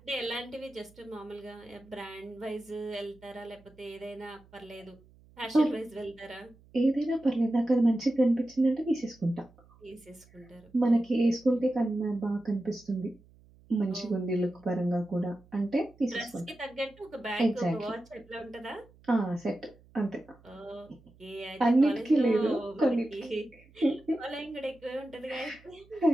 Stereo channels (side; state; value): right; noise; hum, 27 dB below the sound